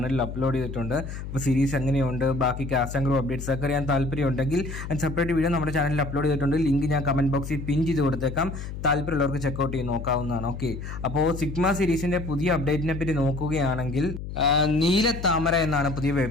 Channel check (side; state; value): left; noise; hum, 8 dB below the sound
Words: അപ്ലോഡ് ചെയ്തിട്ടുണ്ട്. അപ്പോൾ സീരീസ് എങ്ങനെയുണ്ട്, ബാക്കി കാസ്റ്റ് ആൻഡ് ക്രൂ അപ്ഡേറ്റ്സ് ഒക്കെ അറിയാൻ താല്പര്യമുണ്ടെങ്കിൽ സെപ്പറേറ്റ് വീഡിയോ നമ്മുടെ ചാനലിൽ അപ്ലോഡ് ചെയ്തിട്ടുണ്ട്. ലിങ്ക് ഞാൻ കമന്റ് ബോക്സിൽ പിൻ ചെയ്ത് കൊടുത്തേക്കാം. താല്പര്യമുള്ളവർക്ക് ചെക്കൗട്ട് ചെയ്ത് നോക്കാവുന്നതാണ്. ഓക്കെ, അപ്പോൾ സിഗ്മ സീരീസിന്റെ പുതിയ അപ്ഡേറ്റിനെ പറ്റി നോക്കുകയാണെങ്കിൽ നീലത്താമര എന്നാണ് പുതിയ